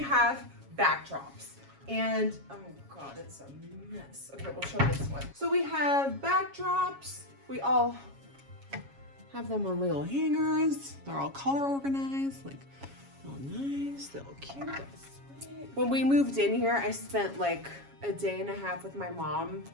have backdrops. And, oh God, it's a mess. Okay, we'll show this one. So we have backdrops. We all have them on little hangers. They're all color organized, like, all nice, they're all cute, they're sweet. When we moved in here, I spent like a day and a half with my mom,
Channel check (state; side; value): late; left; 7.3 ms